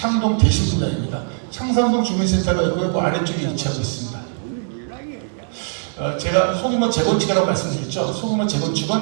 대신분당입니다. 창산동 주민센터가 있고요. 그 아래쪽에 위치하고 있습니다. 제가 소규모 재건축이라고 말씀드렸죠. 소규모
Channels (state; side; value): silent; left; 60 dB below the other